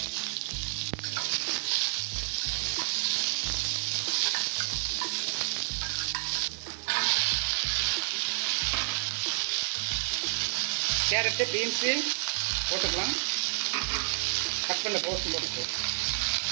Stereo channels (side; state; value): left; silent; digital silence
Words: கேரட்டு, பீன்ஸு போட்டுக்கலாம். கட் பண்ண கோஸும் போட்டுக்கலாம்.